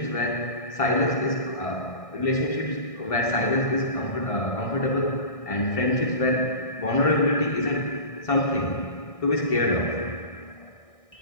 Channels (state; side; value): late; right; 1.6 ms